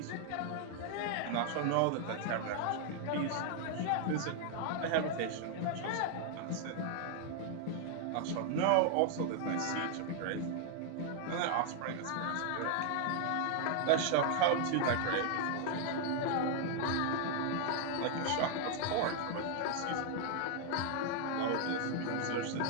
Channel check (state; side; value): different; both; correlation 0.00